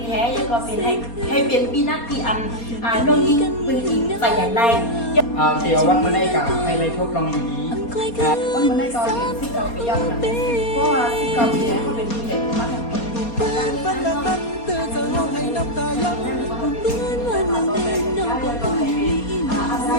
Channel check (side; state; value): right; late; 4.2 ms